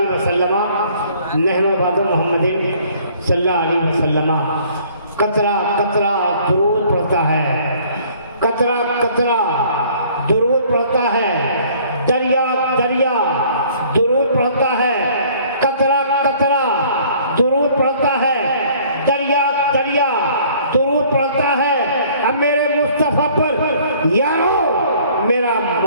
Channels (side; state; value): both; inverted; correlation -0.56